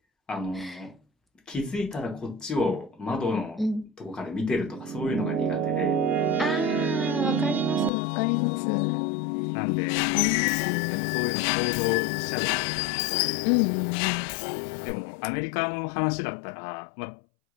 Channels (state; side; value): drops out; right; at 7.9 s